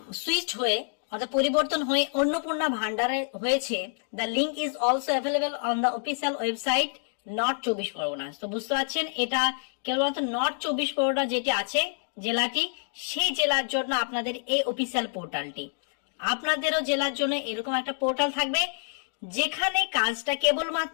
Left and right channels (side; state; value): right; silent; digital silence